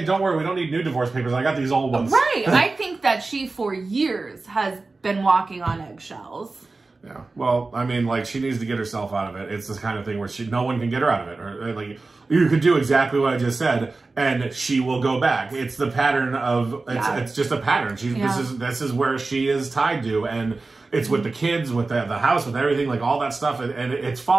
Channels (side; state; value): left; quieter; 3.6 dB